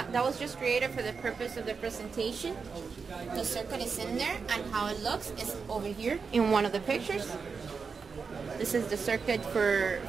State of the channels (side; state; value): left; quieter; 5.3 dB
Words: was just created for the purpose of the presentation. The circuit is in there, and how it looks is over here in one of the pictures. This is the circuit for